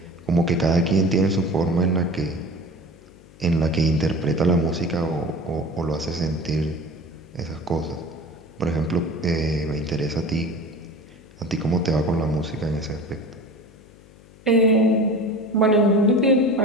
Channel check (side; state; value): left; noise; hum, 24 dB below the sound